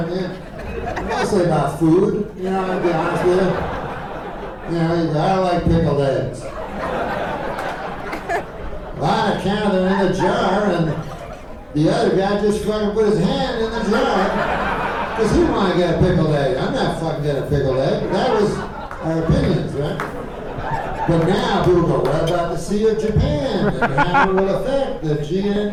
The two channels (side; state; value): both; identical; correlation 1.00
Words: I mean? Mostly about food, you know, I'll be honest with you. You know, you go, I don't like pickled eggs. Well, I counted them in the jar, and the other guy just fucking put his hand in the jar because he wanted to get a pickled egg. I'm not fucking getting a pickled egg. That was our opinions, right? But now people go, what about the Sea of Japan? And how it will affect the